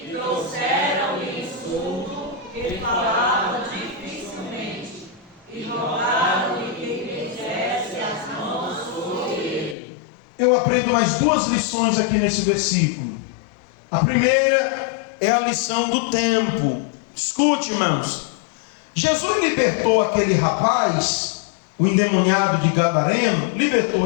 Trouxeram-lhe insulto, ele falava dificilmente, e rogaram-lhe que impusesse as mãos sobre ele. Eu aprendo mais 2 lições aqui nesse versículo. A primeira é a lição do tempo. Escute, irmãos. Jesus libertou aquele rapaz, o endemoniado de Gadareno,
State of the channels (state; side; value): drops out; right; at 9.8 s